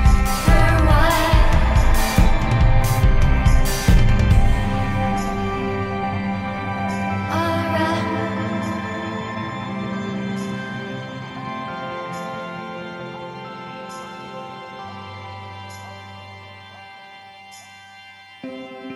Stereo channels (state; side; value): identical; both; correlation 1.00